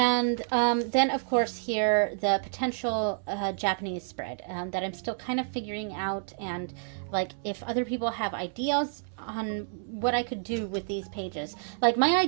then, of course, here, the potential Japanese spread that I'm still kind of figuring out. And, like, if other people have ideas on what I could do with these pages. Like, my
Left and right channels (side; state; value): left; silent; 58 dB below the other